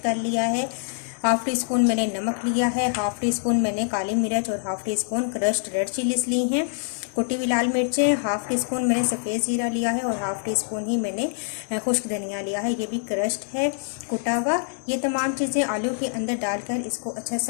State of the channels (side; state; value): right; silent; digital silence